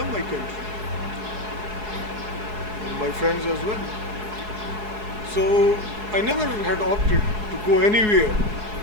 my country and my friends as well. So I never had opted to go anywhere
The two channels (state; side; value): late; left; 4.7 ms